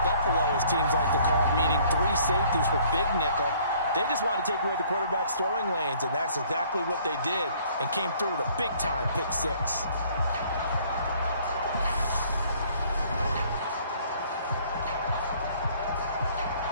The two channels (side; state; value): both; inverted; correlation -0.59